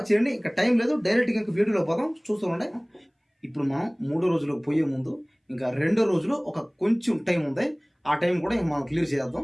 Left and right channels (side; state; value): both; identical; correlation 1.00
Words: చేయండి. ఇంకా టైం లేదు, డైరెక్ట్గా ఇంకా వీడియోలో పోదాం, చూస్తూ ఉండే. ఇప్పుడు మనం 3వ రోజులోకి పోయే ముందు ఇంకా 2వ రోజులో ఒక కొంచెం టైం ఉంది. ఆ టైం కూడా ఇంకా మనం క్లియర్